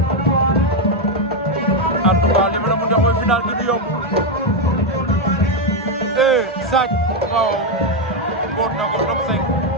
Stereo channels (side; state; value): both; normal; correlation 0.04